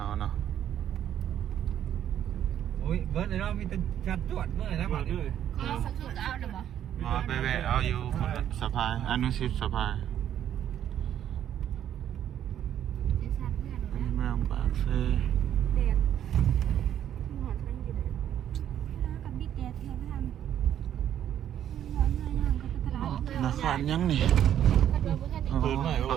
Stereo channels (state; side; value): quieter; left; 10.4 dB